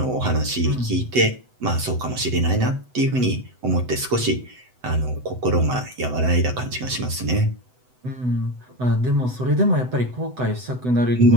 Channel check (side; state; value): left; late; 8.0 ms